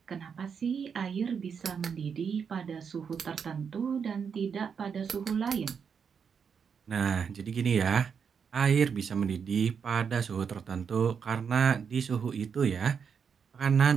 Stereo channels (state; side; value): quieter; left; 6.6 dB